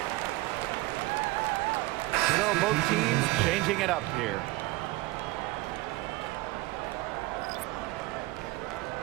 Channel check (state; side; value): quieter; left; 19.5 dB